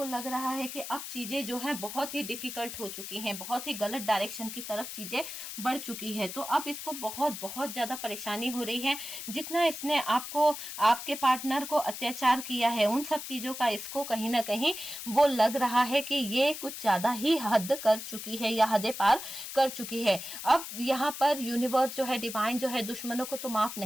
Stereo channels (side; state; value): left; noise; hiss, 8 dB below the sound